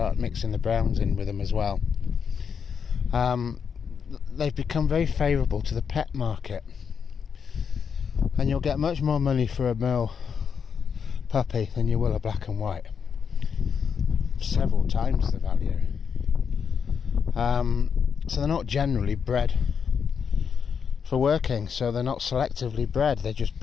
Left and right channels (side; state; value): right; quieter; 6.7 dB